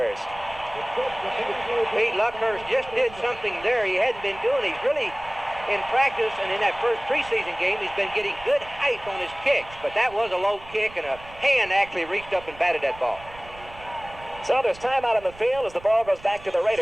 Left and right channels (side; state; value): right; noise; rumble, 19 dB below the sound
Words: Pete, Luckhurst just did something there he hadn't been doing. He's really, in practice and in that first preseason game, he's been getting good height on his kicks, but that was a low kick, and a hand actually reached up and batted that ball. So there's time out on the field as the ball goes back to the